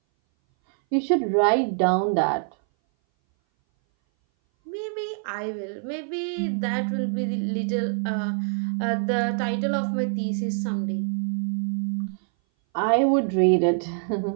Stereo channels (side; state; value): left; silent; 59 dB below the other